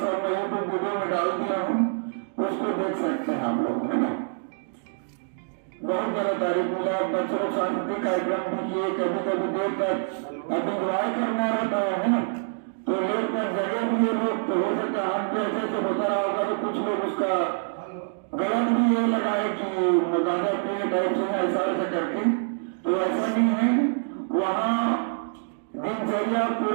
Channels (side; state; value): left; silent; digital silence